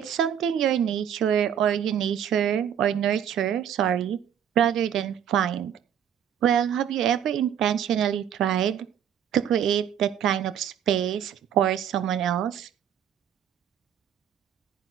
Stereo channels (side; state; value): left; quieter; 9.3 dB